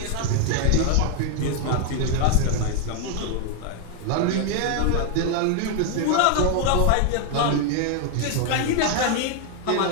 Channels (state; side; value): different; both; correlation 0.00